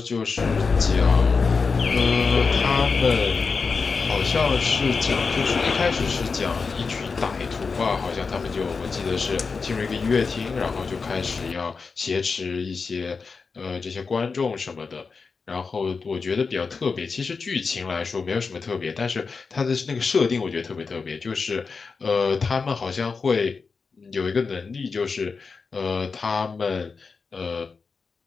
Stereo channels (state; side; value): quieter; right; 4.8 dB